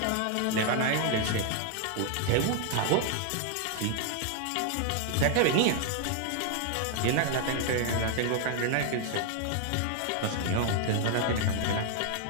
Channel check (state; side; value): different; both; correlation 0.00